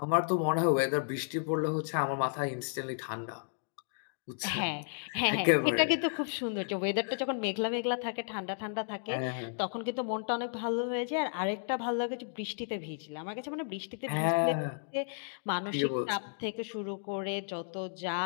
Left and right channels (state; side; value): silent; right; digital silence